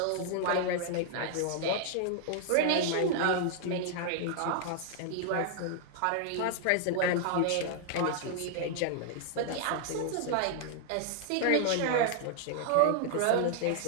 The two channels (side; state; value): both; different; correlation 0.00